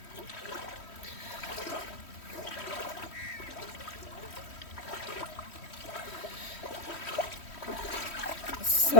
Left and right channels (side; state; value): right; late; 3.1 ms